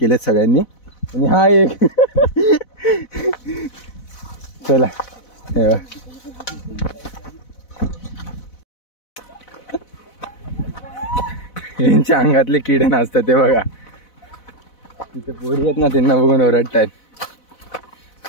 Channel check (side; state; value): right; late; 4.0 ms